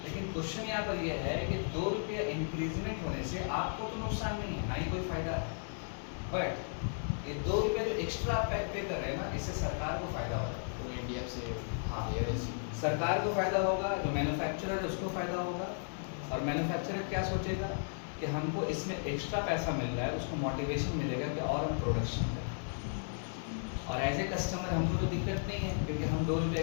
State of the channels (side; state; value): right; silent; digital silence